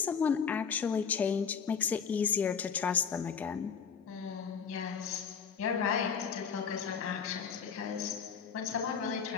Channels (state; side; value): quieter; right; 6.6 dB